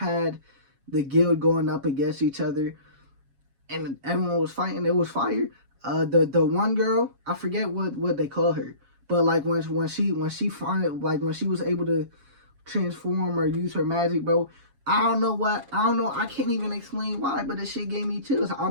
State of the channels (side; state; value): left; late; 7.3 ms